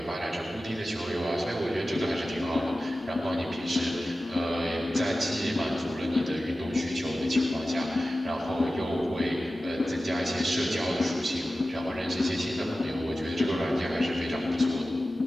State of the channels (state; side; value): normal; both; correlation 0.95